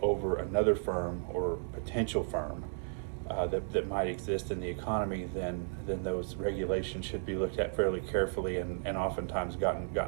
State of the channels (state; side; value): silent; left; 55 dB below the other